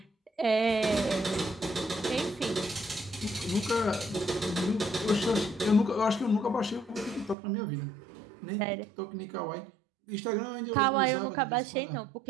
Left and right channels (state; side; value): drops out; left; at 7.4 s